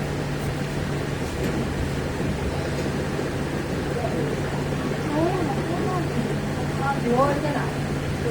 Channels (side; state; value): both; identical; correlation 1.00